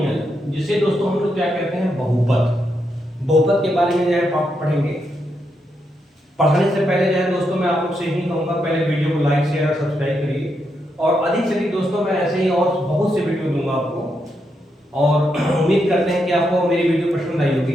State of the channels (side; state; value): both; normal; correlation 0.82